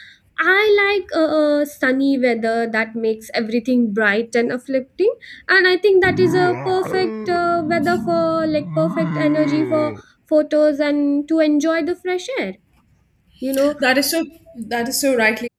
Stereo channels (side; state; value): both; identical; correlation 1.00